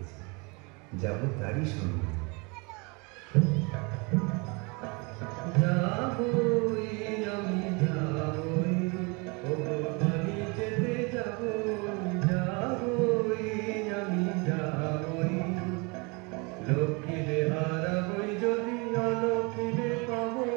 যাব তারই সঙ্গে। যাবই আমি যাবই, ওগো বাড়ি যেতে যাবই, যাবই আমি যাবই, লক্ষ্মীরে হারাবই যদি অলক্ষ্মীরে পাবই,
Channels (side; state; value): left; quieter; 29.5 dB